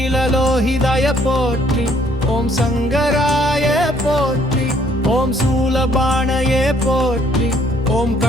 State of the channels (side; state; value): both; normal; correlation 0.64